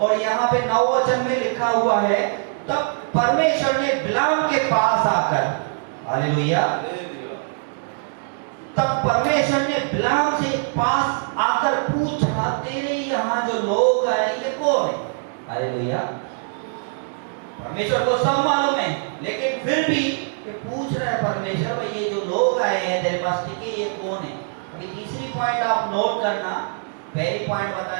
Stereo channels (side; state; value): left; silent; digital silence